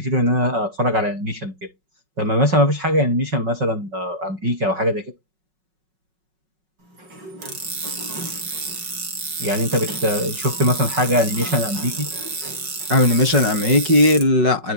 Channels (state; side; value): late; left; 5.4 ms